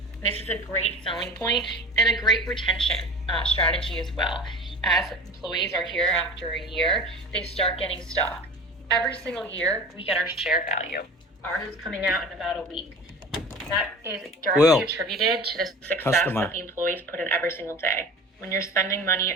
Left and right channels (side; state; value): both; normal; correlation 0.37